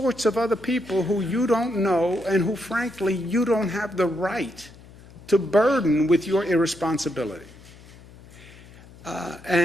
of other people who you don't know and who, frankly, you don't have the right to burden with your irresponsibility.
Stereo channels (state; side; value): noise; left; hum, 21 dB below the sound